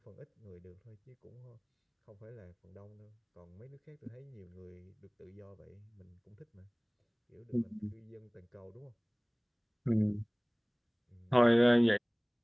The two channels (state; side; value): identical; both; correlation 1.00